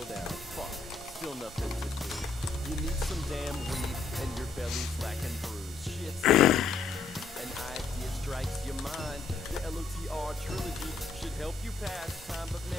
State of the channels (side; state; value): right; quieter; 4.3 dB